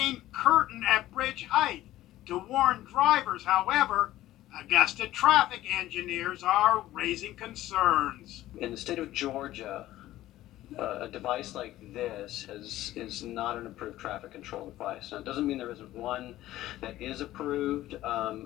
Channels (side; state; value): right; quieter; 14.9 dB